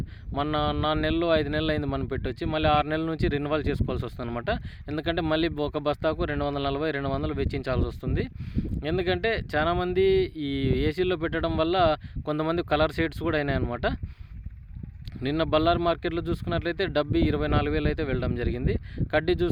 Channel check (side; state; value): both; identical; correlation 1.00